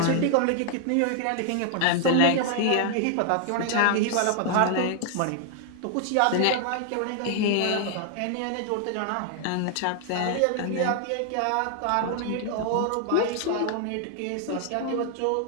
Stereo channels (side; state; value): both; different; correlation 0.00